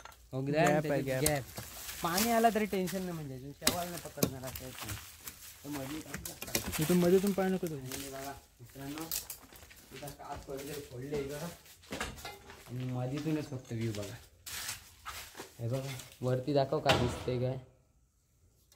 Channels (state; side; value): identical; both; correlation 1.00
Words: गॅप पाणी आला तरी टेन्शन नाही म्हणजे शेवाळ नाही पकडणार असं इथून मध्येतून पाय नको बघा मित्रांनो इथं काच पडले फोडले बघा आणि मधीतूनच फक्त व्ह्यू बघा हे बघा वरती दाखव का दिसते काय.